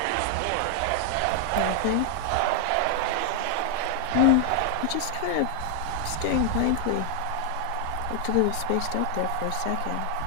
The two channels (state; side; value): different; both; correlation 0.00